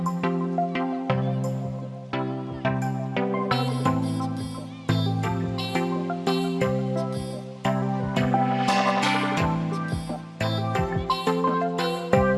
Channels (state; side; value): identical; both; correlation 1.00